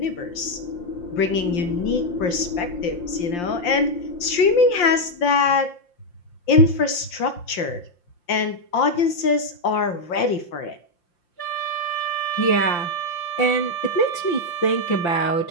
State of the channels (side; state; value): right; late; 5.7 ms